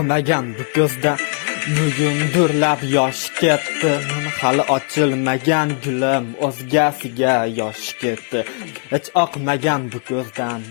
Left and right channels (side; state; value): right; quieter; 39.7 dB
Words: bu ko'zda bugun durlab yosh ketdi. Hali ochilmagan gulim o'zgasiga yosh ketdi. Hech oqmagan bu ko'zdan